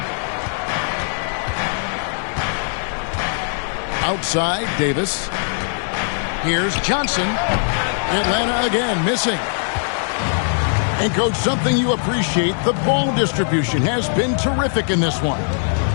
Outside, Davis. Here's Johnson. Atlanta again missing. And, Coach, something you appreciate, the ball distribution has been terrific in this one.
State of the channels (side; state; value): right; silent; digital silence